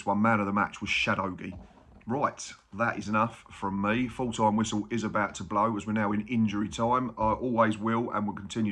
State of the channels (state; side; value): identical; both; correlation 1.00